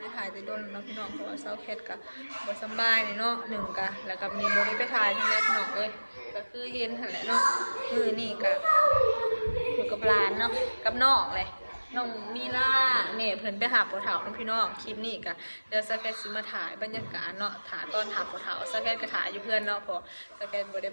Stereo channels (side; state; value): both; inverted; correlation -1.00